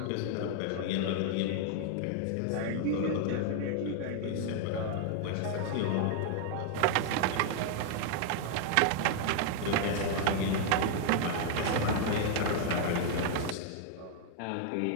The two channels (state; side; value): different; both; correlation 0.00